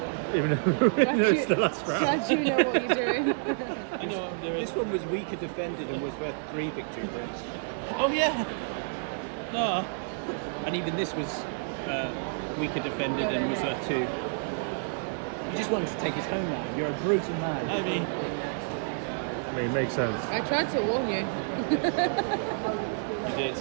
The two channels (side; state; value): left; silent; digital silence